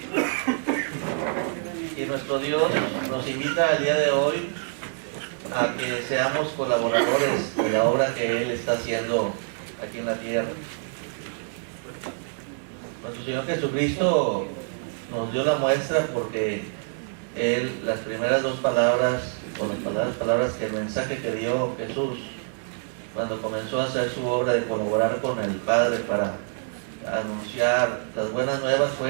Y nuestro Dios nos invita el día de hoy a que seamos colaboradores de la obra que Él está haciendo aquí en la tierra. Nuestro Señor Jesucristo nos dio la muestra porque Él, las primeras dos palabras, o las palabras que el mensaje que dio Jesús cuando comenzó a hacer su obra de colaborar con el Padre para anunciar las buenas nuevas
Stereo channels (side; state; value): left; silent; digital silence